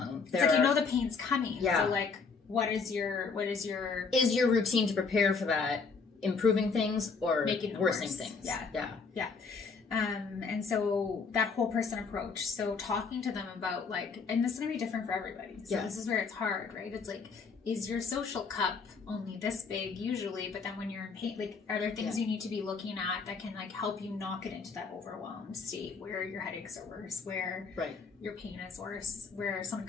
it's like, you know, the pain's coming. Yeah. So like, what is your is your routine to prepare for that improving things or making worsening things? Yeah. And so that whole person approach, so talking to them about like, and this is going to be different for everybody. So this is where it's hard, right? It's like, is your social cup only this big usually, but then when you're in pain, like, are there things you need to be looking at that can like help you not get into that overwhelmed state where your headaches are worse, where your pain is worse, where someone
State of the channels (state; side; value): quieter; right; 4.9 dB